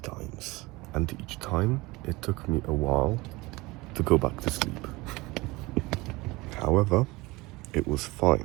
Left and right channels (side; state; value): left; quieter; 22.2 dB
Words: and each time it took me a while to go back to sleep. However, it was